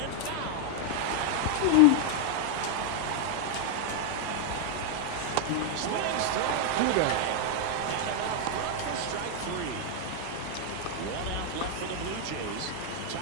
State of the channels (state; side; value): different; both; correlation 0.00